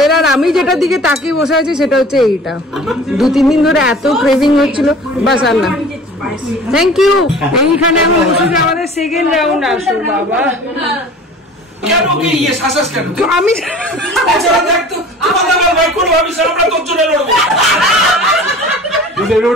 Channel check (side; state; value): both; normal; correlation 0.44